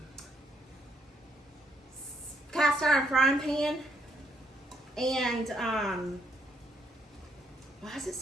cast iron frying pan. And why is it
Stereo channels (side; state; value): both; normal; correlation 0.73